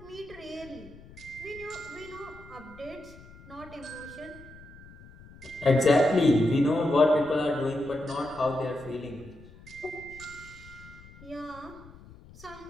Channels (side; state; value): left; noise; rumble, 20 dB below the sound